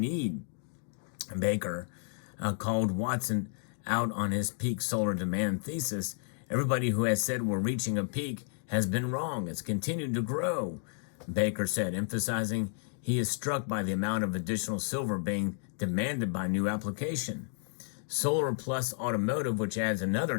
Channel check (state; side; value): silent; right; 57 dB below the other